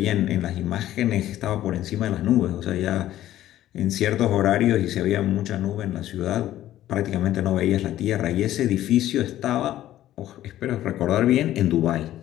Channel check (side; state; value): right; quieter; 13.4 dB